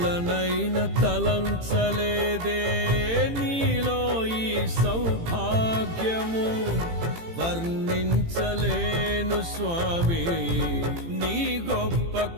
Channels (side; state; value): left; late; 18 ms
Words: తలంచలేదే నీలో ఈ సౌభాగ్యము, వర్ణించలేను స్వామి నీ గొప్ప